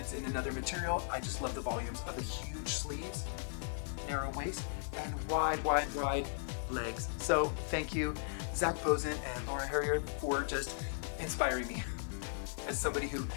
in another material, I just love the volumes of the huge sleeves, narrow waist, and wide legs. So thank you, Zac Posen and Laura Harrier, for just inspiring me. As somebody who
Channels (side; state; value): right; silent; 53 dB below the other